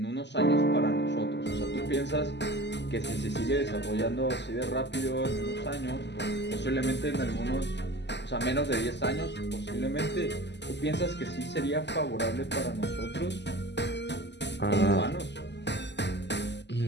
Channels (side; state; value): right; late; 0.50 ms